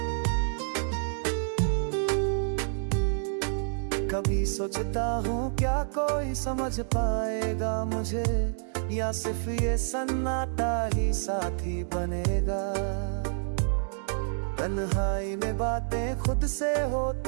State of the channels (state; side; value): silent; left; digital silence